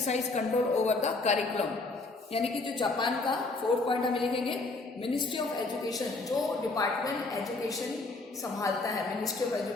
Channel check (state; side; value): quieter; right; 3.4 dB